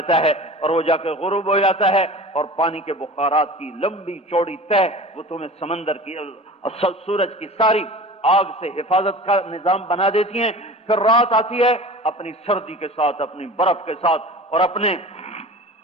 ہے اور وہ جا کے غروب ہو جاتا ہے، اور پانی کے بخارات کی لمبی چوڑی تہ وہ تمہیں سمندر کی سورج کی ساری آگ سے حفاظت کا نظام بنا دیتی ہیں۔ پھر رات آتی ہے اپنی سردی کے ساتھ، اپنی برف کے ساتھ اور اپنے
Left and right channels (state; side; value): normal; both; correlation 0.38